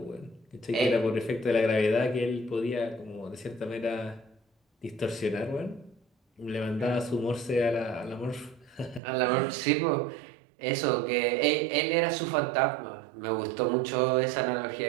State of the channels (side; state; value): left; drops out; at 9.0 s